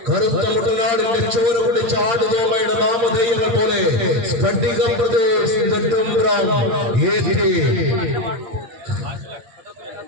കറുത്ത മുട്ടനാടിന്റെ ചോര കുടിച്ച ആടുതോമയുടെ നാമധേയങ്ങൾ പോലെ സ്ഫടികം പ്രദേശ് നെടുമ്പ്രം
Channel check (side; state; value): left; late; 8.7 ms